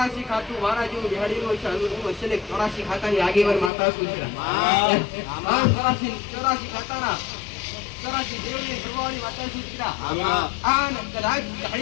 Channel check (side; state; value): right; drops out; at 3.7 s